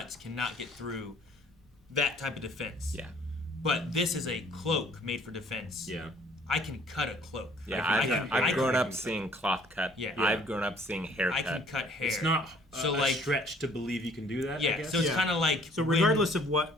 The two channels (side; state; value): both; normal; correlation 0.57